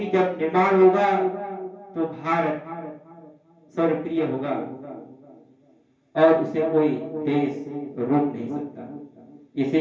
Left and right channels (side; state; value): both; identical; correlation 1.00